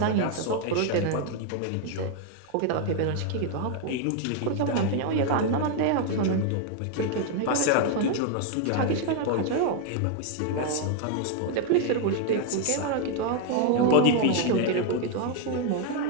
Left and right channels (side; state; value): both; different; correlation 0.01